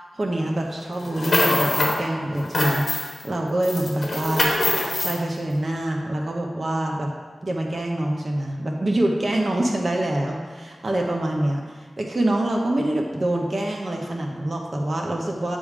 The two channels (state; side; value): normal; both; correlation 0.95